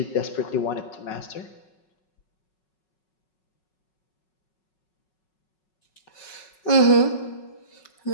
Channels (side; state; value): right; late; 5.4 ms